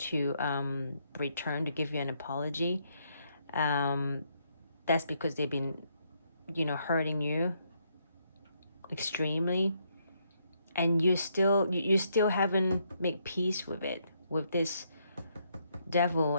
return, to give you an apology. That's because they've been, you know, hurting you extremely, and you still haven't made peace with it, with this devil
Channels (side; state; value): both; inverted; correlation -0.74